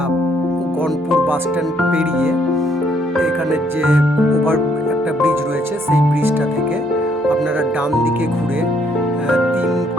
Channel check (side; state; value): both; normal; correlation 0.69